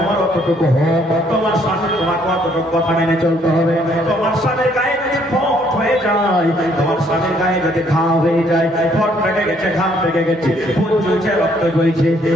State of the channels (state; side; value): normal; both; correlation 0.66